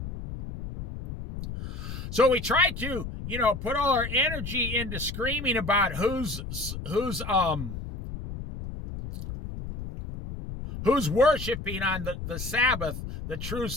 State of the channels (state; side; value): noise; left; rumble, 8 dB below the sound